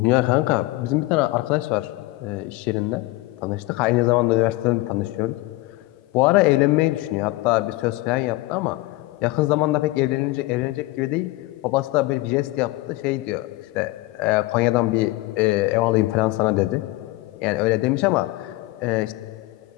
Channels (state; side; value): quieter; right; 19.8 dB